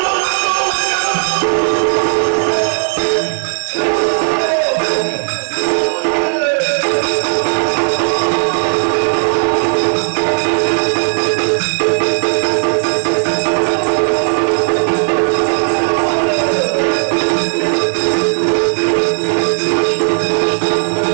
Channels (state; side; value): silent; left; digital silence